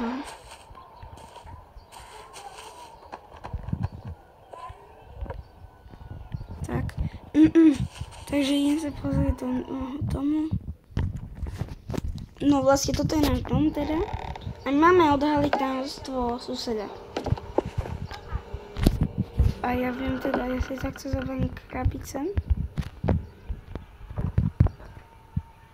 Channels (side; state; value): both; identical; correlation 1.00